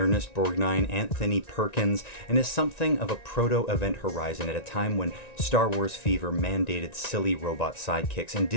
Anthony Perkins, and is something of a proto-Event Horizon at a time when Star Wars fever mandated silly robot sidekicks, and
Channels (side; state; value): right; late; 1.9 ms